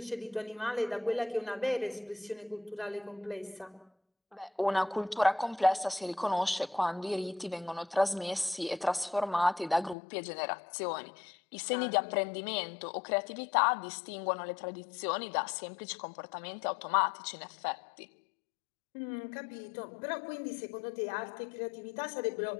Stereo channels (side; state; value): right; drops out; at 10.0 s